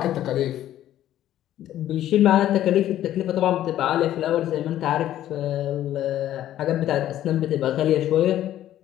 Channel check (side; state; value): right; quieter; 12.5 dB